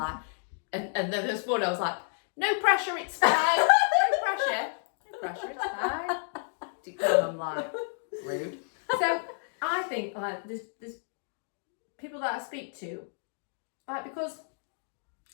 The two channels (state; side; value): silent; right; digital silence